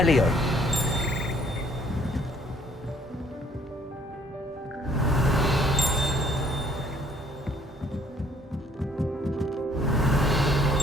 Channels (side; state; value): both; normal; correlation 0.61